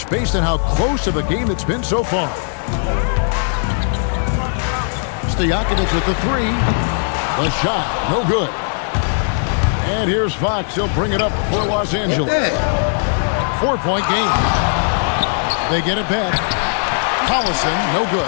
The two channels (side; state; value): right; silent; 67 dB below the other